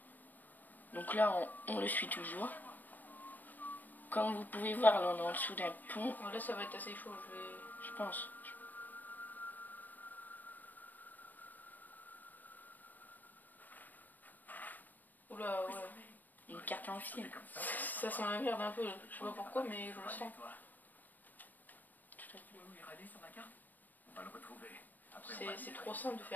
non. Donc là, on le suit toujours. Comme vous pouvez voir, là on est en dessous d'un pont. Là ça va être assez chaud, je pense. Oula, ouais. Une carte en fil. Ça sent la merde un peu, je sais pas pourquoi, mais je le sens. Tout à fait. C'est trop simple de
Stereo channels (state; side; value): late; right; 0.086 ms